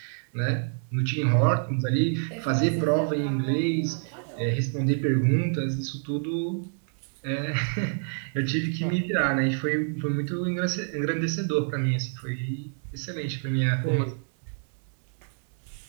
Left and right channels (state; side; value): silent; left; digital silence